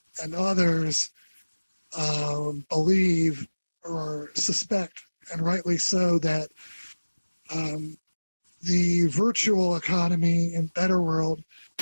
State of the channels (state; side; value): inverted; both; correlation -1.00